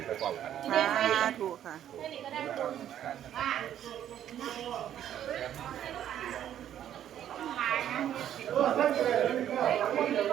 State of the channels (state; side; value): quieter; left; 10.7 dB